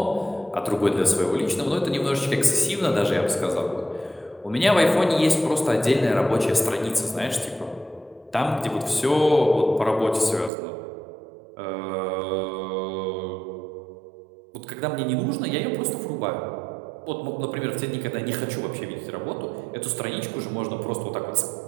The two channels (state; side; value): drops out; left; at 10.5 s